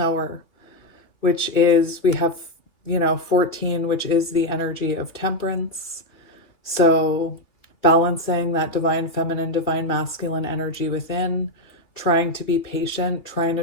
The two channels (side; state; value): right; late; 2.8 ms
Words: which is, we have, you know, 14, which is the energy of temperance. So balancing that divine feminine, divine masculine energy within, trying to be patient, trying